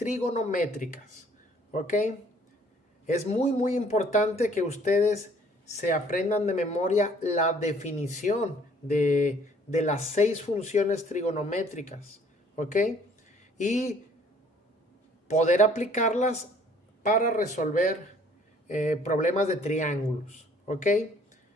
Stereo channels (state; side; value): normal; both; correlation 0.58